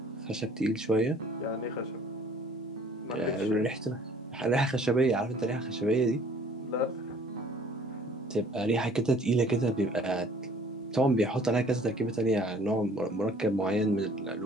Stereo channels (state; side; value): normal; both; correlation 0.54